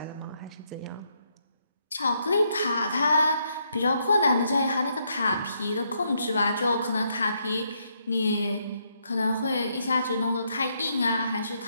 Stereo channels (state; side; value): inverted; both; correlation -0.76